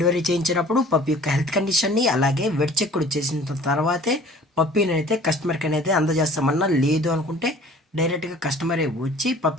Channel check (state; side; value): normal; both; correlation 0.48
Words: చేయించినప్పుడు పప్పి యొక్క హెల్త్ కండిషన్ని అలాగే వెట్ చెక్ కూడా చేసిన తర్వాతే పప్పీని అయితే కస్టమర్కి అనేది అందజేస్తామన్నా. లేదు అనుకుంటే డైరెక్ట్గా కస్టమరే వచ్చి